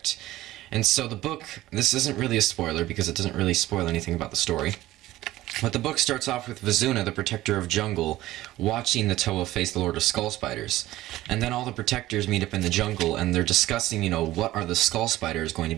And so the book, this isn't really a spoiler because it doesn't really spoil anything about the story. But the book starts off with Vizuna, the Protector of Jungle, watching the Toa face the Lord of Skull Spiders. And then all the Protectors meet up in the jungle, and they're discussing, you know, what are the Skull Spiders going to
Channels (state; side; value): quieter; left; 16.1 dB